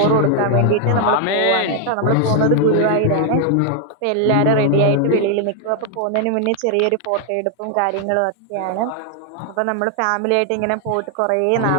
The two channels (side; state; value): both; different; correlation 0.00